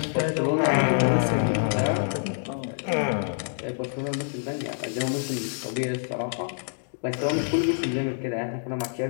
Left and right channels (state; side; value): silent; right; digital silence